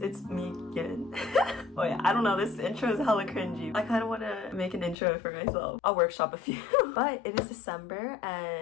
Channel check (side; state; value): right; drops out; at 5.0 s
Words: it's me again. Oh yeah, I don't know, this intro is hella cringy. I kind of want to make an intro for myself. I'll workshop a few. But it is December